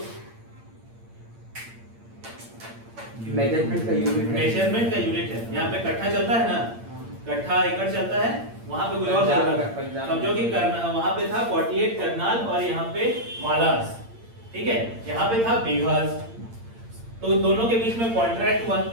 मेजरमेंट का यूनिट है, यहाँ पे कट्ठा चलता है ना, कट्ठा एकड़ चलता है, वहां पे कुछ और चल रहा था, समझो कि वहां पे था 48 करनाल और यहाँ पे मालास, ठीक है, यहाँ पे था बीघास। तो दोनों के बीच में कॉन्ट्रैक्ट हुआ,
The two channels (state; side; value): late; left; 8.7 ms